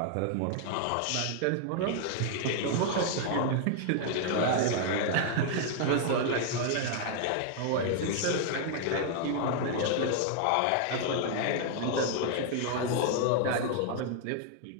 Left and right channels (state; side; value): different; both; correlation 0.00